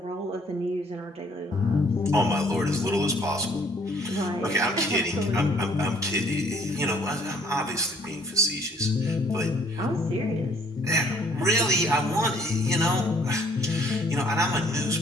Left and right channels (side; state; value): both; normal; correlation 0.61